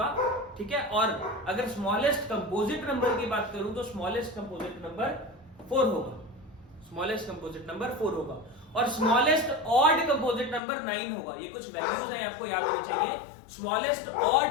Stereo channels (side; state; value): right; drops out; at 10.6 s